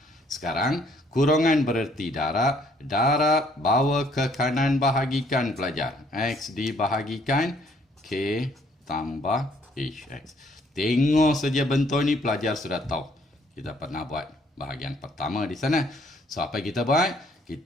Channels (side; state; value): both; normal; correlation 0.64